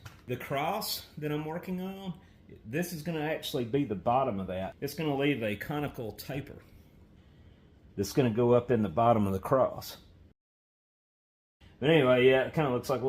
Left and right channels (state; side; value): identical; both; correlation 1.00